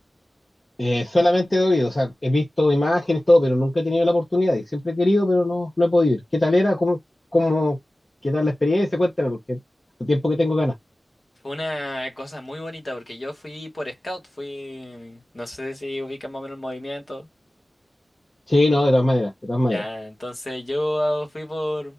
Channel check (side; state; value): both; normal; correlation 0.97